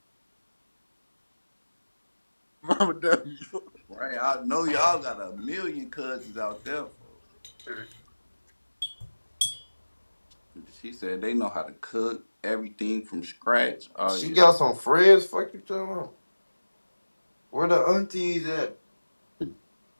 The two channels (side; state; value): both; inverted; correlation -1.00